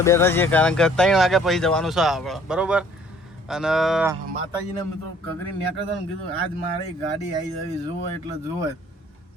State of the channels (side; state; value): both; normal; correlation 0.57